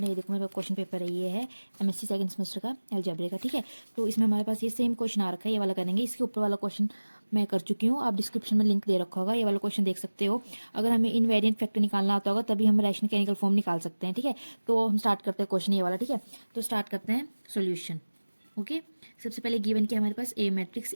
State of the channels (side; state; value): both; inverted; correlation -1.00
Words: है। ये देखो मेरे पास क्वेश्चन पेपर है, ये है एमएससी सेकंड सेमेस्टर का अलजेब्रा का, ठीक है। तो इसमें हमारे पास ये सेम क्वेश्चन आ रखा है, ये वाला करेंगे। इसके ऊपर वाला क्वेश्चन मैं कर चुकी हूँ, आप डिस्क्रिप्शन में लिंक दे रखा होगा, ये वाला क्वेश्चन देख सकते हो। अगर हमें इनवेरिएंट फैक्टर निकालना आता होगा तभी हम रैशनल केमिकल फॉर्म निकाल सकते हैं, ठीक है। तो हम स्टार्ट करते हैं क्वेश्चन ये वाला, ठीक है। तो स्टार्ट करते हैं सोल्यूशन। ओके, सबसे पहले गिवन क्या हमारे पास, ए मैट्रिक्स।